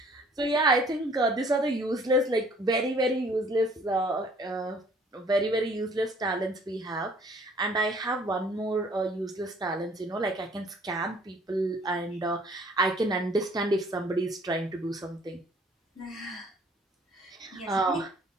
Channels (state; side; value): normal; both; correlation 0.57